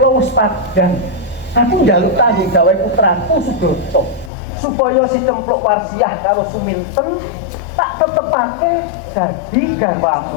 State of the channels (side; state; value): right; drops out; at 4.3 s